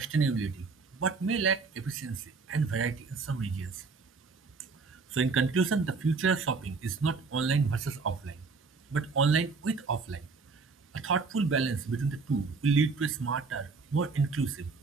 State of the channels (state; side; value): quieter; left; 4.4 dB